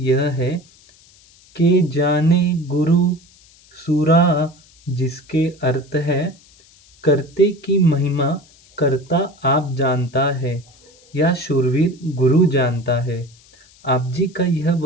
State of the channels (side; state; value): left; noise; hiss, 28 dB below the sound